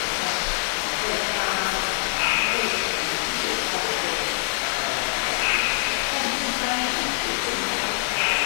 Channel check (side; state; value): right; silent; digital silence